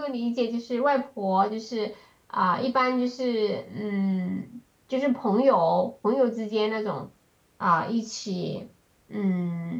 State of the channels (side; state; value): both; identical; correlation 1.00